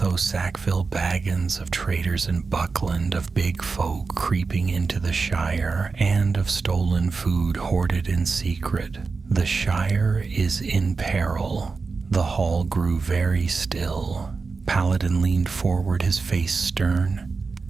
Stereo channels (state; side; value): quieter; left; 4.5 dB